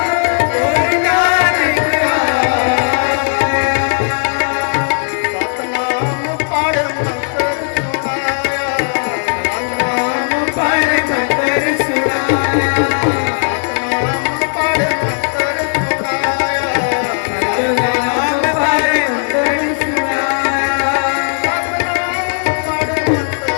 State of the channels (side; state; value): right; silent; digital silence